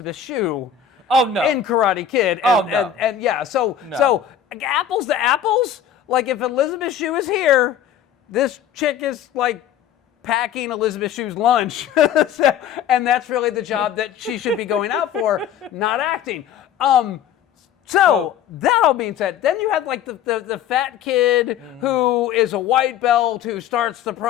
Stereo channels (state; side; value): quieter; right; 9.2 dB